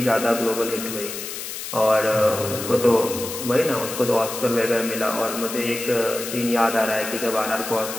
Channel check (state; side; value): noise; left; hiss, 8 dB below the sound